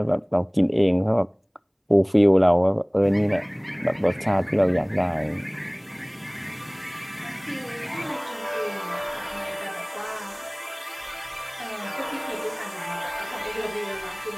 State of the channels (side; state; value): both; identical; correlation 1.00